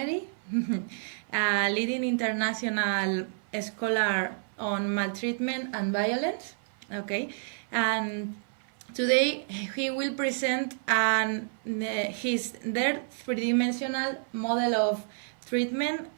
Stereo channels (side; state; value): left; silent; 57 dB below the other